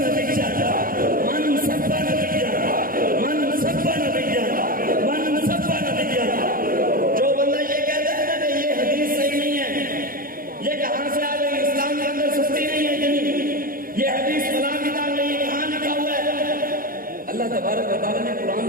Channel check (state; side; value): late; left; 0.41 ms